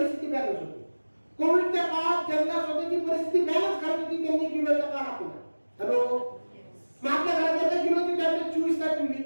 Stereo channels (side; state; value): both; inverted; correlation -1.00